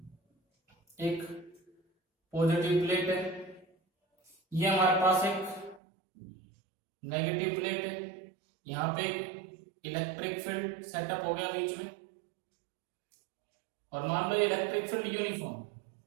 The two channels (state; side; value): drops out; left; at 5.8 s